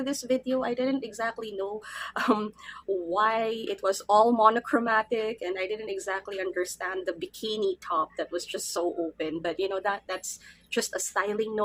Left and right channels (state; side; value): identical; both; correlation 1.00